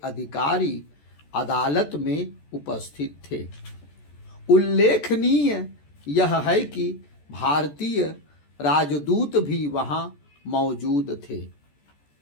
अधिकारी अदालत में उपस्थित थे। उल्लेखनीय यह है कि भारतीय राजदूत भी वहां मौजूद थे।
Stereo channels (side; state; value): right; late; 14 ms